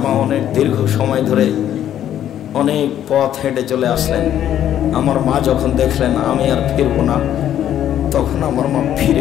মা অনেক দীর্ঘ সময় ধরে অনেক পথ হেঁটে চলে আসলেন। আমার মা যখন দেখলেন আমি আর ফিরবো না, তখন আমার মা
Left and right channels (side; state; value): right; quieter; 10.9 dB